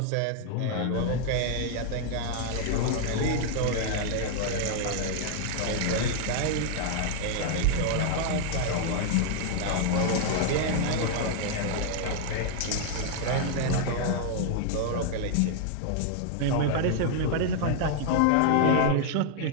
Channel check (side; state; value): both; different; correlation 0.00